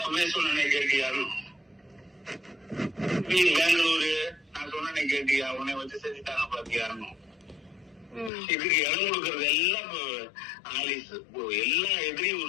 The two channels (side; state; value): right; drops out; at 8.3 s